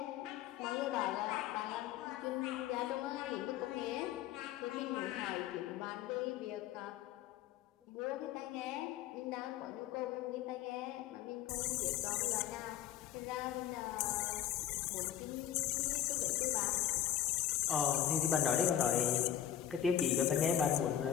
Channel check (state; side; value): quieter; right; 10.7 dB